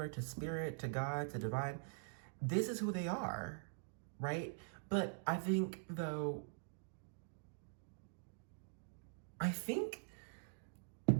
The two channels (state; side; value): silent; left; digital silence